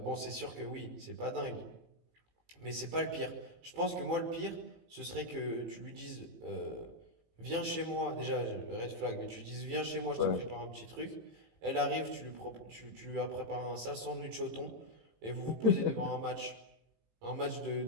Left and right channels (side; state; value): left; late; 18 ms